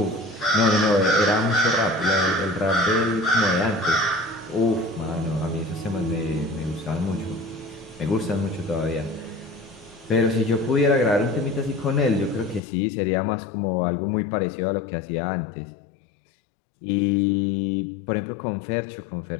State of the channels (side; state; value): right; drops out; at 12.6 s